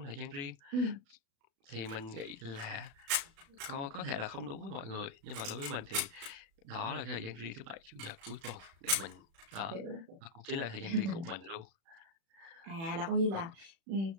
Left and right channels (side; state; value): left; late; 36 ms